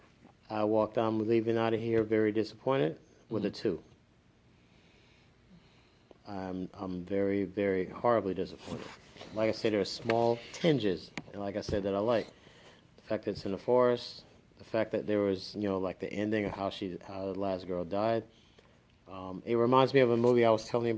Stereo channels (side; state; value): both; identical; correlation 1.00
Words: I walked out, leaving out of here very disappointed with a 2. I'm very, very horribly disappointed. Like I said, there are small tinges, and like I said, that I like. The fact that it's in the forest, the fact that there was, like the ending of how the last girl died. It reminds me of a movie I was telling you